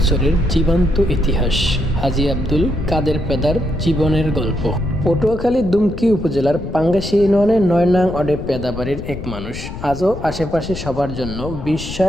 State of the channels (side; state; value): left; noise; rumble, 10 dB below the sound